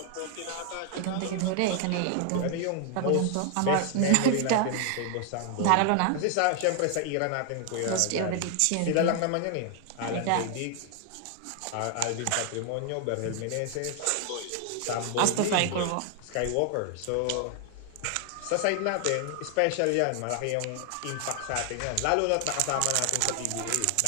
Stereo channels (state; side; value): different; both; correlation 0.00